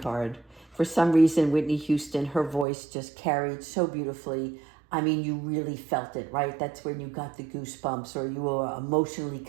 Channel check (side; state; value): left; drops out; at 2.7 s